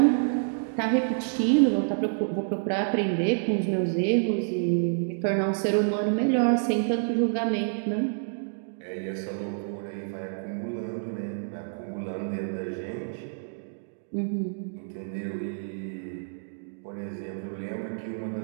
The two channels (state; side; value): silent; left; digital silence